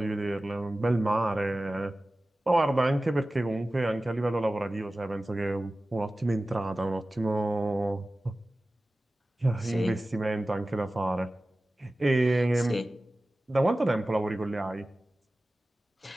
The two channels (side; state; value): both; normal; correlation 0.96